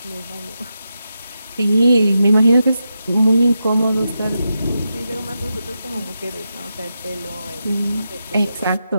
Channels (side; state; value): both; inverted; correlation -0.87